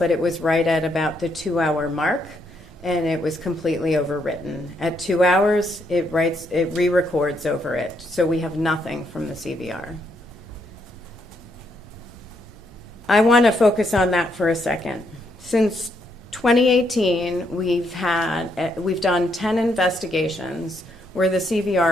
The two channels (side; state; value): both; normal; correlation 0.75